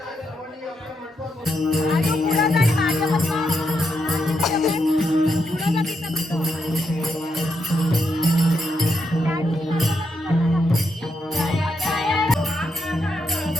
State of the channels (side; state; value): both; normal; correlation 0.81